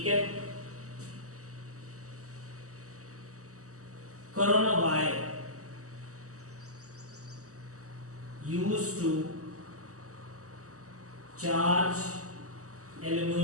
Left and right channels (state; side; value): late; left; 0.66 ms